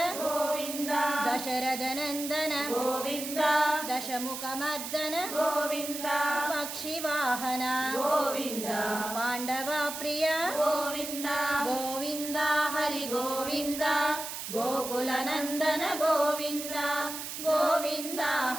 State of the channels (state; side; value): noise; right; hiss, 7 dB below the sound